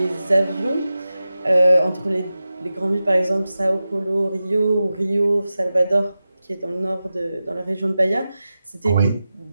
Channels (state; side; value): inverted; both; correlation -0.93